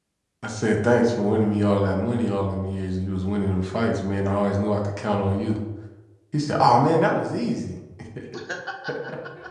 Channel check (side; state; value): both; identical; correlation 1.00